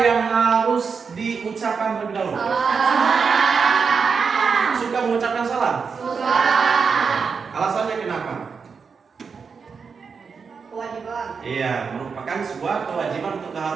yang harus diucapkan terlebih dahulu? Suka mengucapkan salam? Suka. Alasannya kenapa? Kewajiban. Iya, merupakan sebuah kewajiban untuk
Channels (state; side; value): quieter; left; 5.6 dB